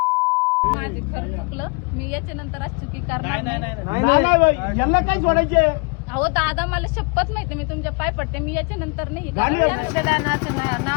माझे खरं चुकलं मी याच्या नंतर आज चुकी करणार नाही यांना काय सोडायचे अहो दादा मला शपथ माहिती मी तुमच्या पाय पडते मी याच्या नंतर नाही मतदानाचं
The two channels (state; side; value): quieter; right; 31.6 dB